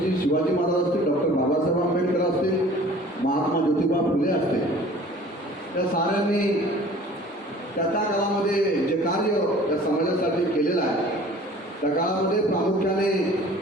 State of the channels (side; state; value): both; normal; correlation 0.48